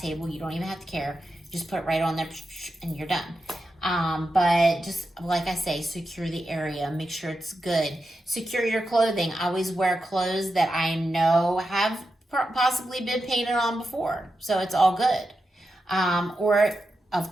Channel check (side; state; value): both; normal; correlation 0.89